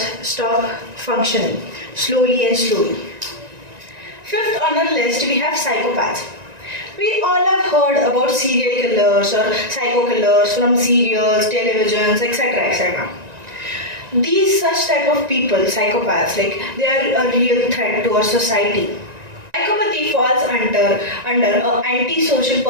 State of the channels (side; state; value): left; late; 1.9 ms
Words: stop functioning slowly and slowly. Fifth on our list, we have psychopaths. We all have heard about serial killers or psycho killers from serials, televisions, etc. etc. These such type of people, psychopaths, they are a real threat to our society. Psychopathy falls under a antisocial